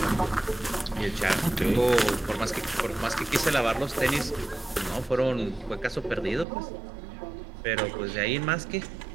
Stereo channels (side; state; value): left; drops out; at 6.5 s